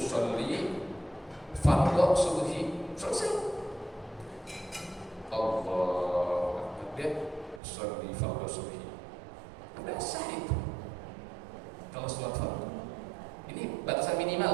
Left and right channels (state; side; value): drops out; left; at 7.6 s